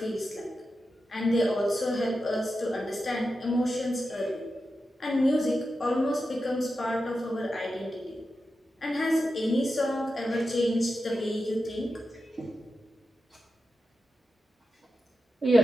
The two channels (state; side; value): normal; both; correlation 0.90